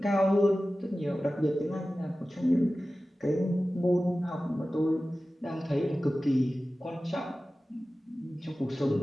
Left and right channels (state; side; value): normal; both; correlation 0.95